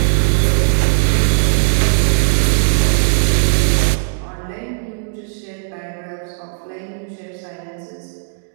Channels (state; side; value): silent; left; digital silence